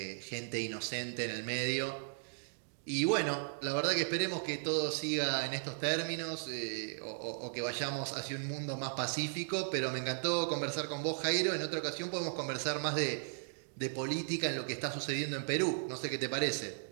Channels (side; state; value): left; silent; digital silence